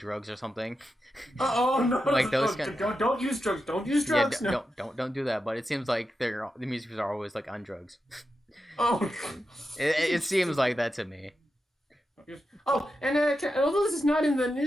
or something. No! Like those don't use drugs. Don't use drugs. Yeah, don't do that. But it seems like the music videos are always like on drugs. It seems like that to me. Oh, and although this is not in the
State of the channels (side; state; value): both; normal; correlation 0.89